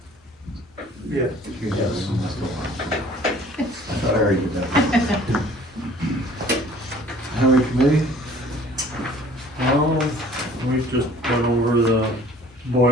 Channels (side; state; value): both; normal; correlation 0.52